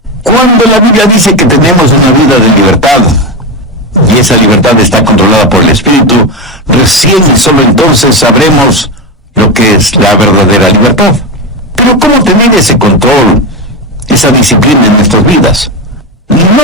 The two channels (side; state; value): both; normal; correlation 0.14